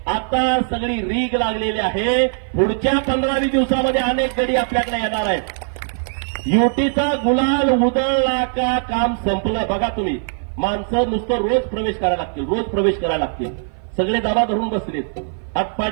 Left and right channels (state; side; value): silent; left; 56 dB below the other